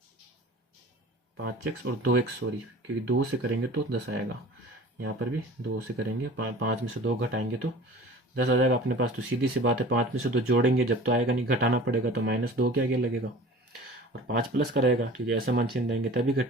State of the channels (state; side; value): normal; both; correlation 0.42